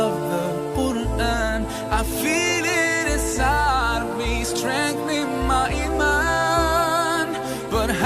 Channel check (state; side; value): identical; both; correlation 1.00